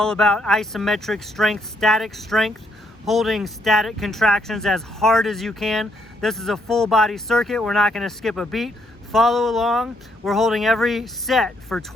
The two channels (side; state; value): both; normal; correlation 0.73